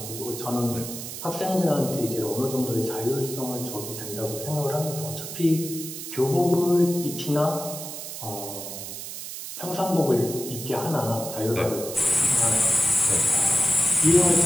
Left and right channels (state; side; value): noise; right; hiss, 9 dB below the sound